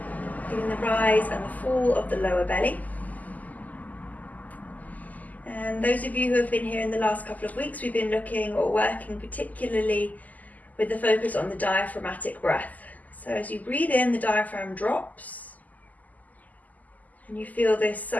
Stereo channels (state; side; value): late; right; 0.079 ms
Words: Feeling the rise and the fall of the lower belly. And those of you who have been here in the last couple of weeks, we've been looking or working particularly with the focus on the diaphragmatic breath. So as you breathe in, the diaphragm drops, and you feel this